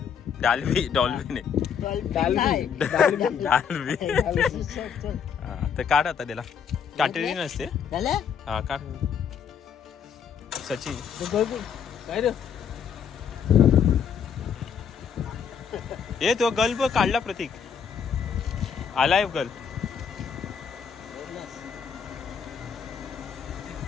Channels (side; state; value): right; quieter; 7.2 dB